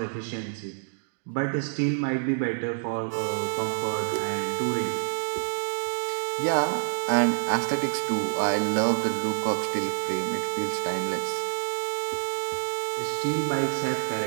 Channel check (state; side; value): silent; left; 60 dB below the other